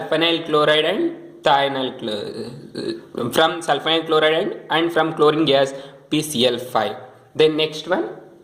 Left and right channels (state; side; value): identical; both; correlation 1.00